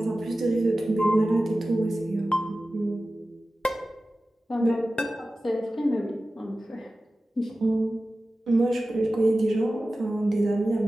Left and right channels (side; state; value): both; normal; correlation 0.95